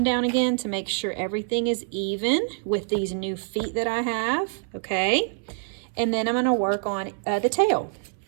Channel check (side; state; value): left; silent; 59 dB below the other